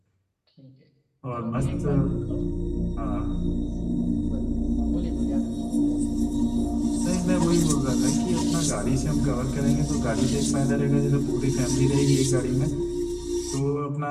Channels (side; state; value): both; identical; correlation 1.00